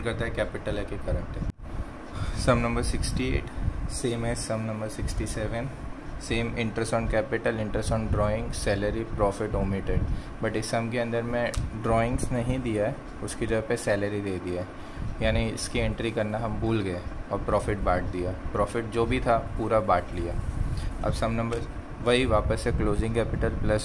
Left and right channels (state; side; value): identical; both; correlation 1.00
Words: करता है कैपिटल है कि करंट है। सम नंबर 68 सेम है sum number 67। Same interest on capital, interest on drawing, salary, profit omitted. But इस सम के अंदर में ड्राइंग्स नहीं दिया है, उसकी जगह पे सैलरी दे दिया है, यानी इसकी एंट्री करना हम भूल गए और प्रॉफिट बांट दिया। प्रॉफिट जो भी था पूरा बांट लिया। अब सम नंबर वही वापस से closing capital